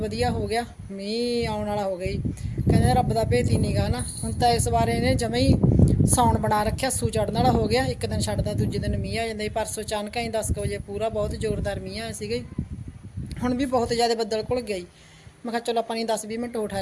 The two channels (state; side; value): identical; both; correlation 1.00